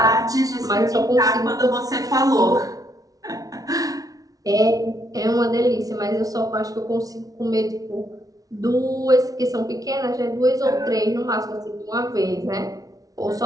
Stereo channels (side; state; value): left; late; 0.18 ms